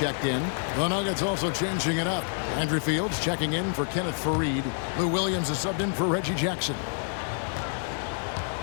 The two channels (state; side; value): silent; right; digital silence